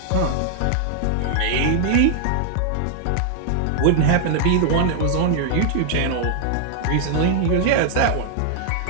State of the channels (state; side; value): different; both; correlation 0.00